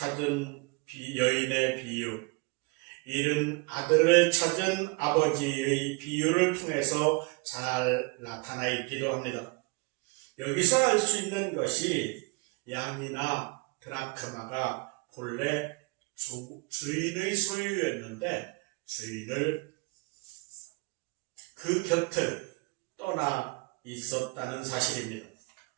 여인의 비유, 잃은 아들을 찾은 아버지의 비유를 통해서 잘 나타나 있기도 합니다. 여기서 알 수 있는 것이 양이나 드라크마가 본래 주인의 소유였는데 주인을 그 곁을 떠나 있었다는 사실입니다.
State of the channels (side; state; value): left; quieter; 28.6 dB